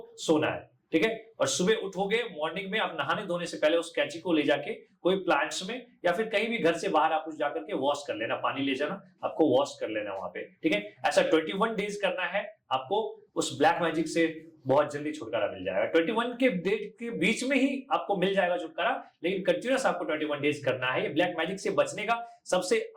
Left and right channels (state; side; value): identical; both; correlation 1.00